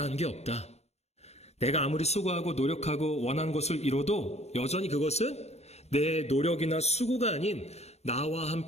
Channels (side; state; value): right; late; 0.31 ms